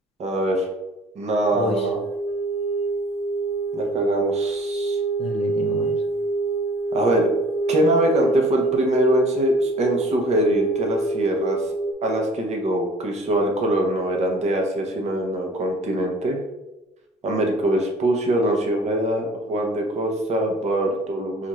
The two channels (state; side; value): normal; both; correlation 0.50